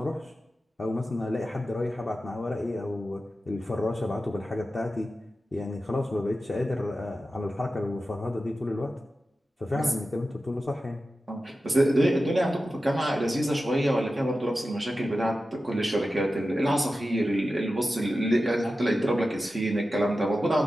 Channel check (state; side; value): normal; both; correlation 0.93